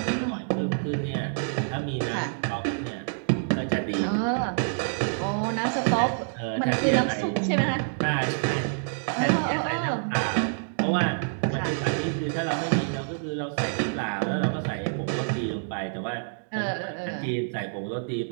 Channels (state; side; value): silent; left; digital silence